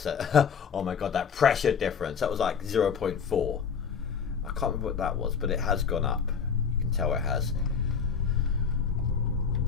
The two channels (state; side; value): quieter; right; 6.4 dB